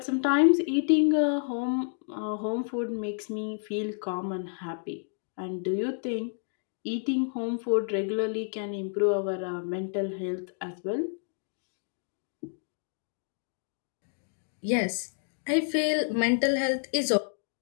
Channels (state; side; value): silent; right; digital silence